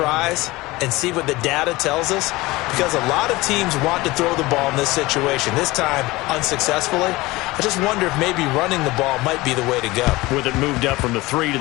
and see what the data tells us, because a lot of teams want to throw the ball in this situation. This time, unsuccessfully. I just wonder if maybe running the ball might be the way to go. With it moved up from the 3 to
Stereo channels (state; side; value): quieter; right; 20.6 dB